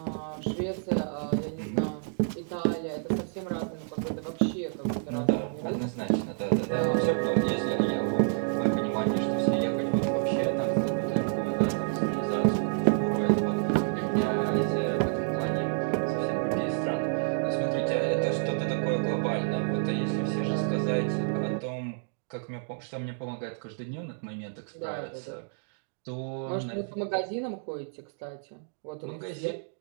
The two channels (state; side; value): silent; left; digital silence